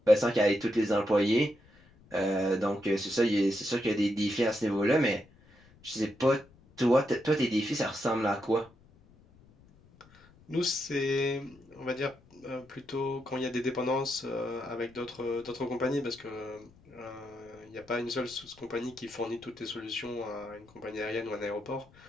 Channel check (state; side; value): noise; left; rumble, 27 dB below the sound